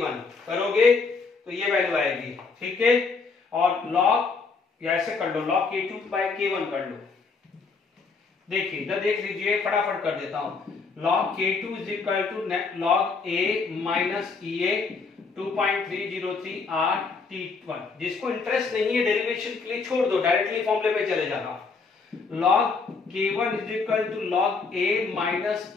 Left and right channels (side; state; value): right; quieter; 4.6 dB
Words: करोगे तो ये वैल्यू आएगी, ठीक है। और log या ऐसे कर लो, log k2 बाय k1 कर लो। देखिए इधर देख लीजिए, फटाफट कर देता हूं। log k2 is equal to log a minus EA 2.303 r t1। जिसको इंटरेस्ट नहीं है डेरिवेशन के लिए छोड़ दो, डायरेक्टली फॉर्मूले पे चले जाना। log k1 is equal to log a minus